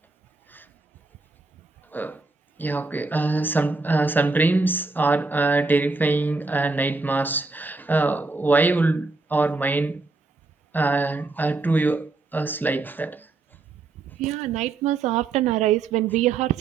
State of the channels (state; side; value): quieter; left; 3.7 dB